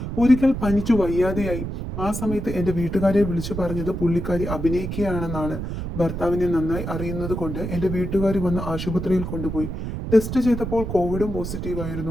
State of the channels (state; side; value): noise; right; rumble, 5 dB below the sound